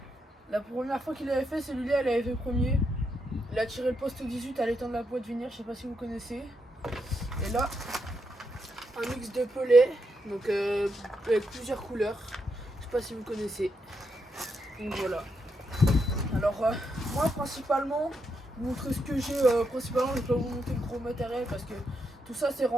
la première fois qu'il avait fait celui-là, il avait fait premier. Il a tiré le poste 18 à l'étang de la Pointe Venir, je sais pas si vous connaissez. Et là, un mix de pelets, donc avec plusieurs couleurs, je sais pas si vous connaissez. Donc voilà. Alors moi principalement, vous montrer ce que j'ai principalement, je vais pas vous montrer le gros matériel parce que tout ça c'est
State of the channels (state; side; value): normal; both; correlation 0.81